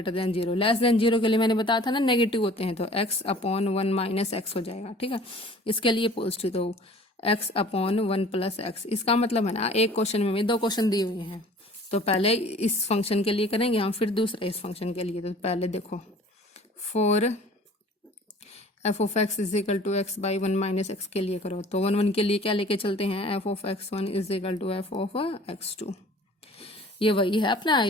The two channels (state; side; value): normal; both; correlation 0.48